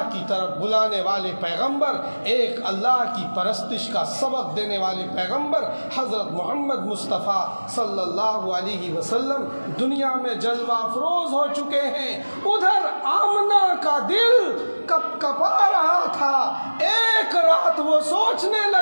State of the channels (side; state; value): both; inverted; correlation -1.00